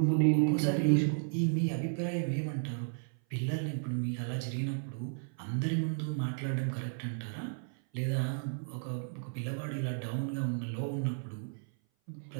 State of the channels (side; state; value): left; silent; 55 dB below the other